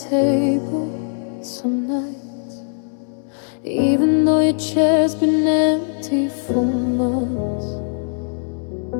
table some nights, even though your chair's been empty for months.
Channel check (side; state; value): right; silent; 64 dB below the other